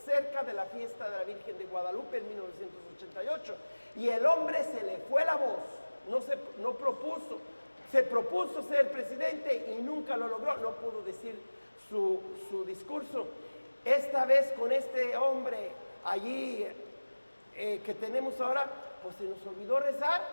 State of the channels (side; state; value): both; inverted; correlation -1.00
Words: cerca de la fiesta de la Virgen de Guadalupe en 1988. Y el hombre se le fue la voz, se propuso ser presidente y nunca lo logró, no pudo decir su discurso. Esta vez con este hombre allí que tenemos ahora, pues se nos olvidó